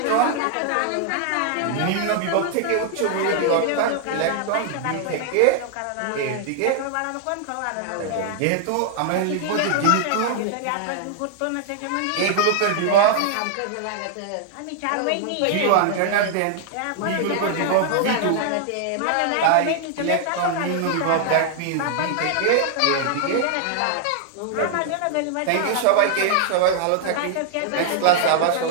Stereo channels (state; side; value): different; both; correlation 0.00